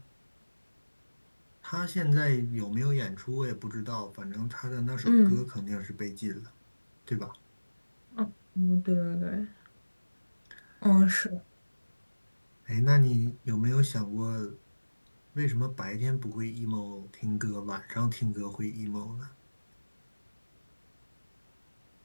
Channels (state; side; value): inverted; both; correlation -1.00